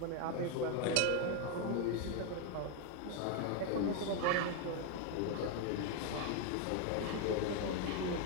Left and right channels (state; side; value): different; both; correlation 0.01